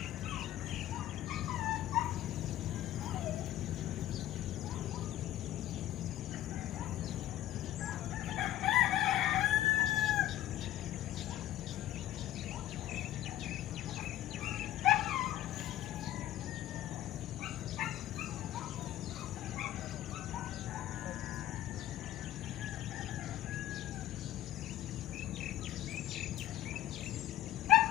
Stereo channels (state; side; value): quieter; right; 13.5 dB